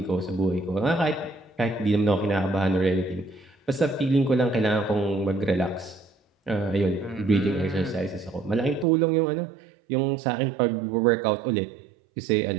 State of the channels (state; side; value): drops out; left; at 8.8 s